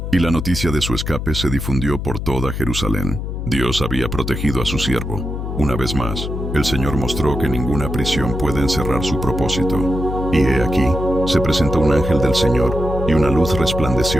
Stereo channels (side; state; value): left; noise; hum, 5 dB below the sound